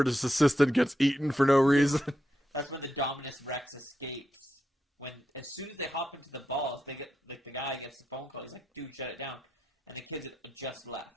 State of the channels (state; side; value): normal; both; correlation 0.85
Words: assistant gets eaten for no reason. That's when the Indominus Rex escapes. As soon as they hop into the balls, they get the guy gets the phone call. He's like, "Dude, shut it down." And the kids had just